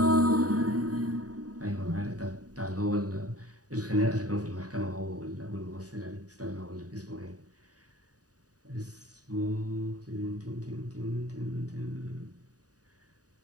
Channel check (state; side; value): late; left; 0.68 ms